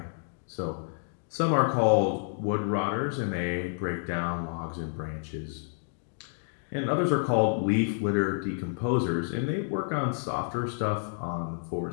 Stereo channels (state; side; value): silent; right; digital silence